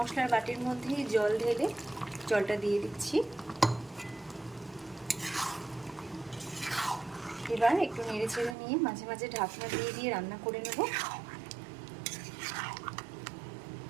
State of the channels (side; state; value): left; drops out; at 8.6 s